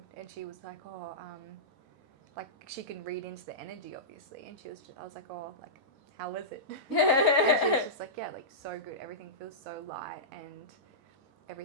and she was like, like she can read into the energy obviously, and I was like, like, how was it? And she was just like, like so good, everything feels so light and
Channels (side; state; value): both; normal; correlation -0.16